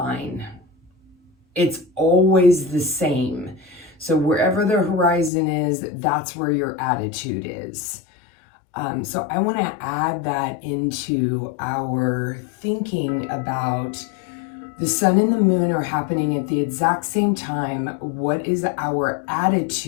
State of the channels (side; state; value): right; drops out; at 5.3 s